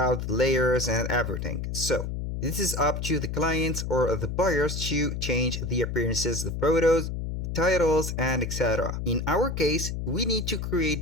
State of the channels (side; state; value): left; noise; hum, 4 dB below the sound